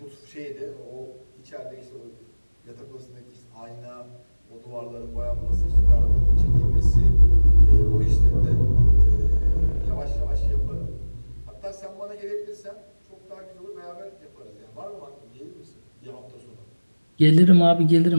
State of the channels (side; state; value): both; inverted; correlation -1.00